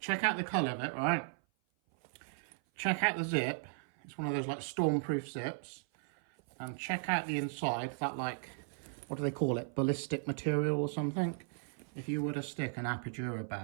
check out the colour of it, right? Check out the zip. It's one of those like stormproof zips. And check out the inside, that like, what do they call it? Ballistic material or something? If you were to stick an Apogura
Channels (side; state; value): left; silent; 54 dB below the other